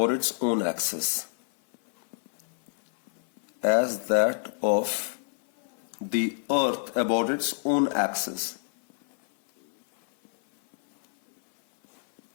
its own axis. As that of the earth about its own axis.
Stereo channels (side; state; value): right; silent; 57 dB below the other